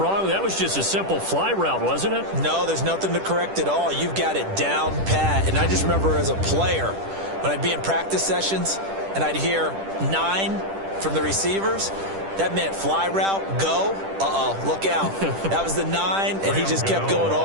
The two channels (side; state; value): left; late; 10 ms